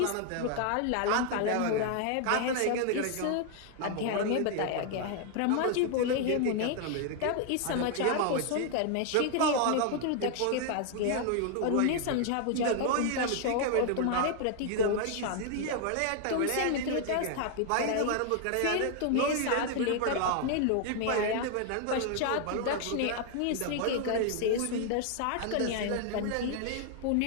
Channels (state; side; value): different; both; correlation 0.00